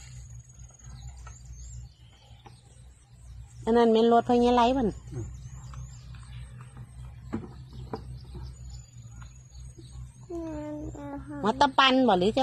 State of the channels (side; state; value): both; identical; correlation 1.00